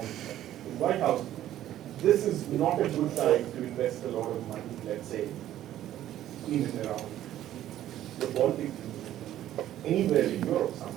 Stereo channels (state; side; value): quieter; left; 12.6 dB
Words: the White House, this is not a good time to invest a lot of money, let's say, in and around the Baltic, anywhere in Europe,